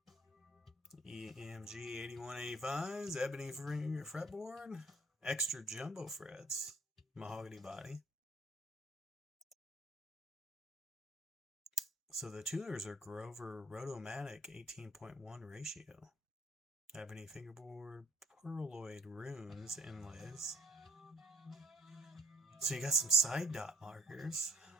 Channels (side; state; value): both; normal; correlation 0.60